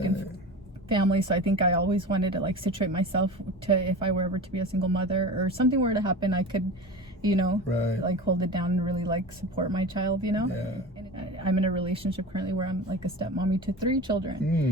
families, so I think I always wanted to like situate myself to, if I were ever to be a single mother or something were to happen, I could, you know, like hold it down and really like support my child, you know. And I'm in a relationship currently where I'm like a stepmommy to 3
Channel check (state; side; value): normal; both; correlation 0.31